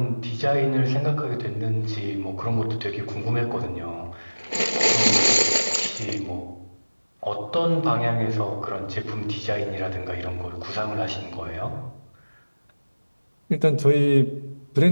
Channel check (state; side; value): inverted; both; correlation -1.00